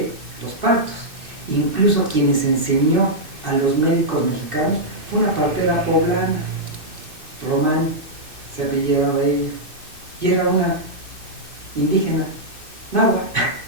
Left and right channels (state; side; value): late; left; 2.6 ms